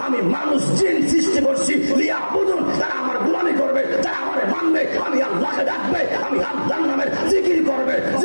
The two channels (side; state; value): both; inverted; correlation -1.00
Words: আমি মানুষ জিন সৃষ্টি করছি লিয়াবুদুন, তারা আমার গোলামি করবে, তারা আমারে মানবে, আমি আল্লাহকে ডাকবে, আমি আল্লাহর নামের জিকির করবে,